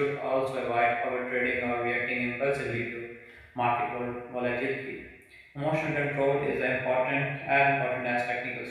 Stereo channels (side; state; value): both; identical; correlation 1.00